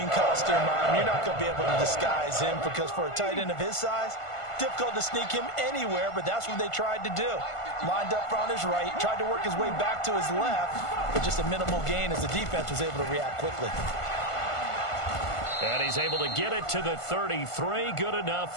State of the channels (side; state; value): right; late; 1.5 ms